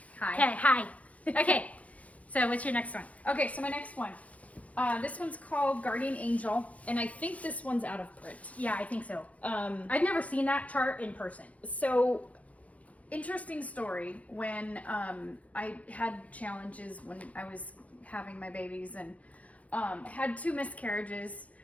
Hi. Okay, hi. Okay, so what's your next one? Okay, so my next one. This one's called Guardian Angel, and I think this one's out of print. Yeah, I think so. I've never seen that chart in person. So, interesting story. When I had challenges when I was having my babies and had 2 miscarriages.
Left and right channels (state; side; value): late; right; 0.066 ms